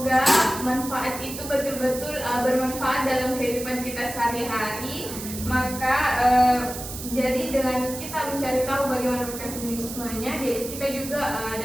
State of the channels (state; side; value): noise; right; hiss, 9 dB below the sound